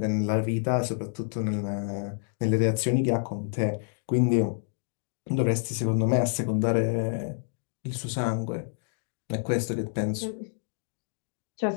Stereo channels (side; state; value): right; silent; digital silence